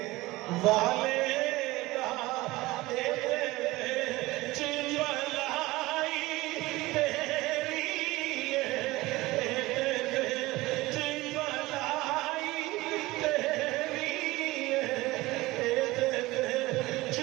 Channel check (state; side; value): quieter; left; 19.7 dB